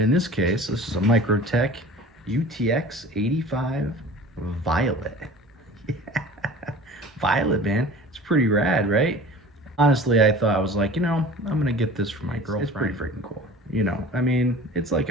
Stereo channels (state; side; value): normal; both; correlation 0.41